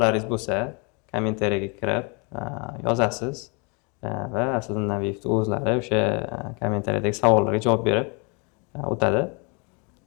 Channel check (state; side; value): quieter; right; 32.0 dB